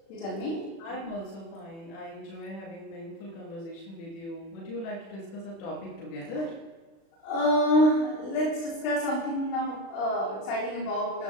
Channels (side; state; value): right; late; 36 ms